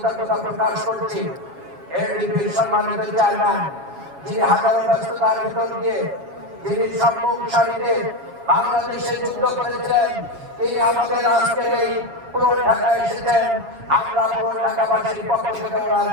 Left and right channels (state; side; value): late; left; 7.3 ms